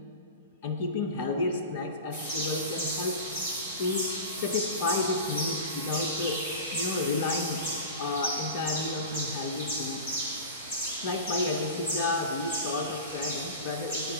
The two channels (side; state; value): both; inverted; correlation -0.31